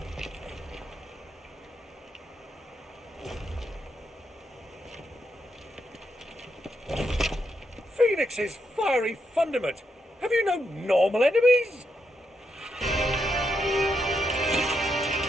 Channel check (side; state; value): both; normal; correlation 0.81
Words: Phoenix's fiery fundament. Have you no normal enemies?